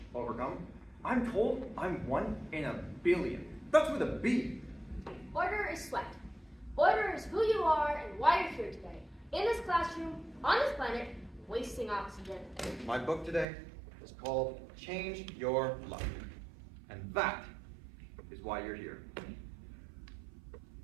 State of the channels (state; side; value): drops out; left; at 13.5 s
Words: overcome. I'm told I'm 1 in a billion. That's with a B. Order is sweat. Order is who you are and why you're here today. In this classroom, on this planet, wasting oxygen. My book today is called Change Your Luck. And that is why you're here.